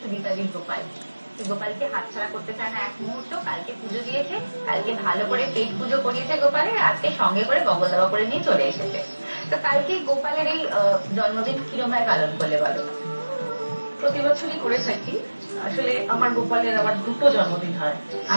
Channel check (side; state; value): both; inverted; correlation -1.00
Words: সুদীপাদির গোপাল। গোপালকে হাতছাড়া করতে চায় না এক মুহূর্ত। কালকে পুজো দিয়েছে, কালকে ভালো করে পেট পুজো করিয়েছে গোপালের, আজকে সঙ্গে করে বগল দাবা করে নিয়ে চলে এসেছে। তো কালকে গোপালের এই জন্মদিন কিরকম পালন করলে বলো? প্রতি বছরই করে থাকি। আসলে আমার গোপালের আবার দুটো জন্মদিন হয়।